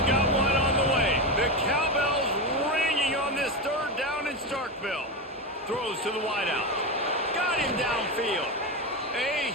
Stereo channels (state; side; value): normal; both; correlation 0.15